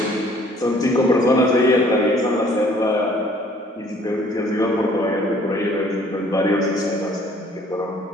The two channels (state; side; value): normal; both; correlation 0.57